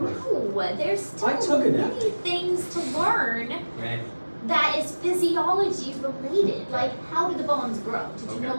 there's still I took it out. many things to learn Okay. that is physiology related. Like, how do the bones grow? Did you Okay.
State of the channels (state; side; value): inverted; both; correlation -1.00